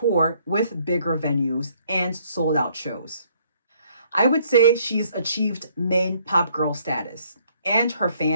with bigger venues and sold out shows. I would say she's achieved main pop girl status, and her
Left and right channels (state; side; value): inverted; both; correlation -0.65